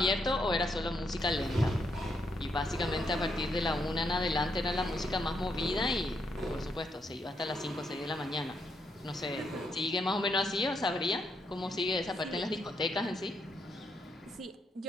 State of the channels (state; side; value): normal; both; correlation 0.78